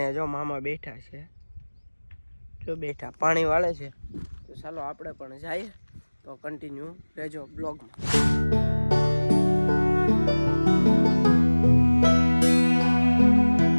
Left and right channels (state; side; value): inverted; both; correlation -1.00